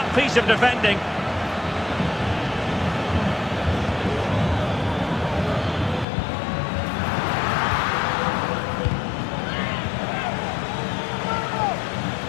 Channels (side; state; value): right; drops out; at 6.1 s